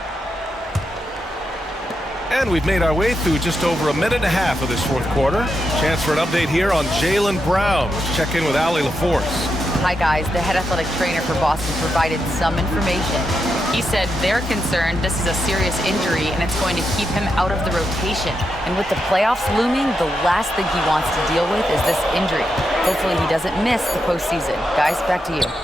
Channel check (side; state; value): both; normal; correlation 0.85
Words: And we've made our way through just over a minute and a half of this fourth quarter. Chance for an update here on Jaylen Brown. Let's check in with Allie LaForce. Hi, guys. The head athletic trainer for Boston provided some information. He said they're concerned this is a serious injury and it's going to keep him out of the rotation. And with the playoffs looming, the last thing he wants to deal with is this injury. Hopefully he doesn't miss the postseason. Guys, back to you.